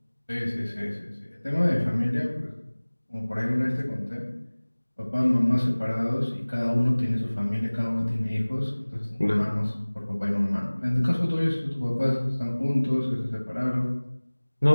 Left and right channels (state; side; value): inverted; both; correlation -1.00